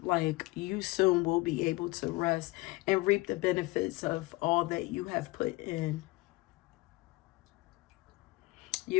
like you soon will be able to rest and reap the benefits of all that you have put in.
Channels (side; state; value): right; quieter; 21.9 dB